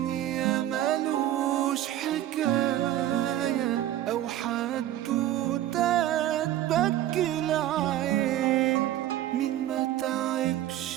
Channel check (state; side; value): quieter; left; 13.0 dB